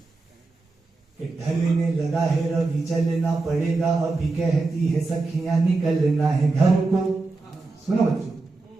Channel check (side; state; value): left; quieter; 3.6 dB